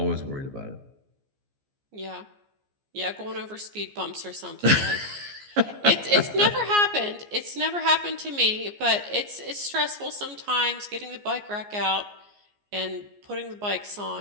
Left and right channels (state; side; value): late; left; 14 ms